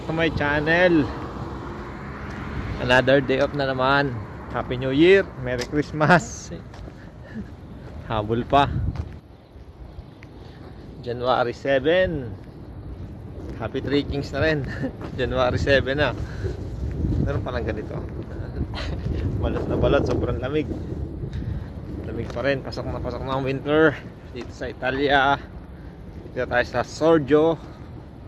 to my channel. Another day off na naman. Happy New Year, Merry Christmas. Habol pa. January 7. Happy Three Kings na rin. January 7 na. Meron palang ganito. Balot na balot, sobrang lamig. Lamig pa rin, pasok na ang winter. Dito sa Italia. Dito tayo sa Sorgio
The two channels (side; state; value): both; identical; correlation 1.00